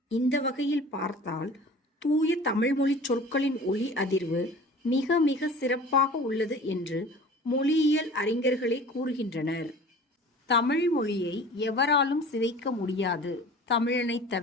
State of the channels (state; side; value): normal; both; correlation 0.42